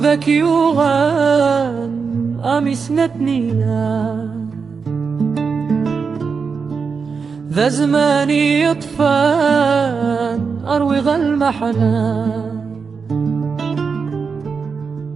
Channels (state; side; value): quieter; left; 5.4 dB